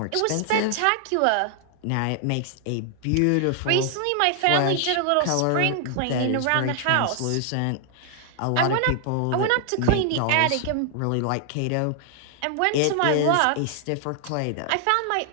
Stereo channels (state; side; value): different; both; correlation 0.00